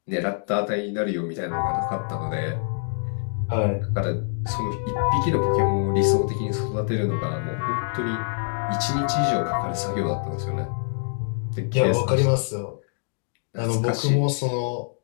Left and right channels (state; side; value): silent; right; digital silence